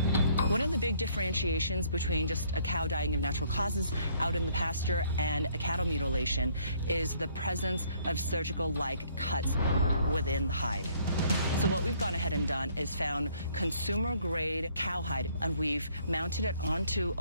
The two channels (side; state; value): both; inverted; correlation -0.64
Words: One of the big differentiations between just a cow dying of natural causes out in the pasture and a cattle mutilation is the presence of surgical-like cuts within the hide. So what we've gone ahead and done is found consumer-grade cowhide, and we've mounted it onto